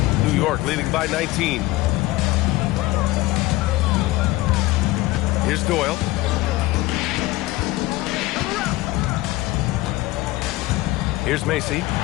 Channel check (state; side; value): quieter; right; 18.7 dB